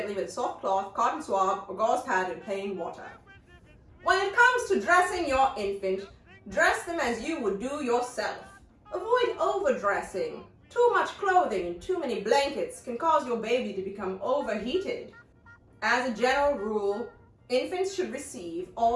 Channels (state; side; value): identical; both; correlation 1.00